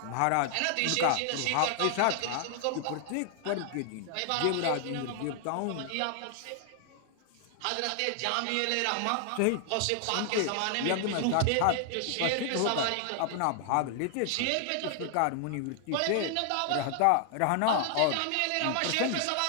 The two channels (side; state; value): both; different; correlation 0.00